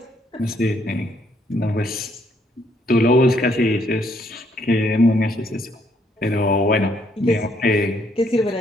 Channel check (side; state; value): both; normal; correlation 0.70